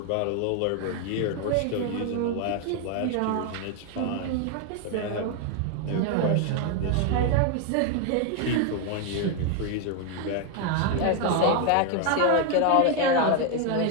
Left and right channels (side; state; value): both; different; correlation 0.00